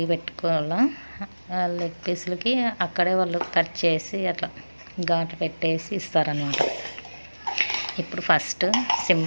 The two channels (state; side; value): inverted; both; correlation -1.00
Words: పెట్టుకోవాలా. లెగ్ పీసులకి అక్కడే వాళ్ళు కట్ చేసి అట్లా ఘాటు పెట్టేసి ఇస్తారనమాట. ఇప్పుడు ఫస్ట్